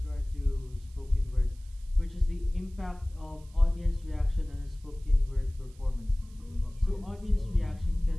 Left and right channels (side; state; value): right; noise; hiss, 29 dB below the sound